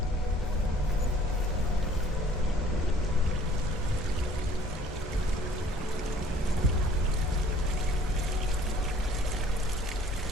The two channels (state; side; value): normal; both; correlation 0.55